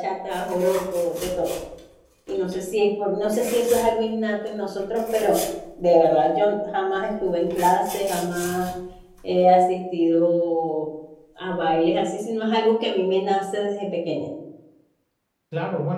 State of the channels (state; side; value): identical; both; correlation 1.00